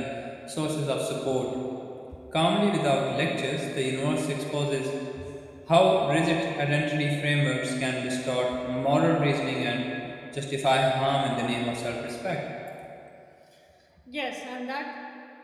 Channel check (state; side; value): identical; both; correlation 1.00